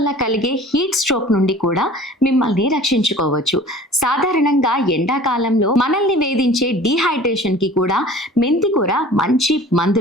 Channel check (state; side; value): normal; both; correlation 0.44